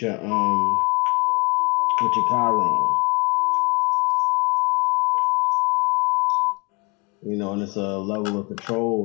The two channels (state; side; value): quieter; right; 30.3 dB